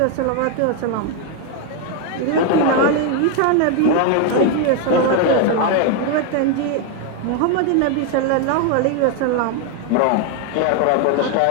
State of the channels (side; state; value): both; different; correlation 0.01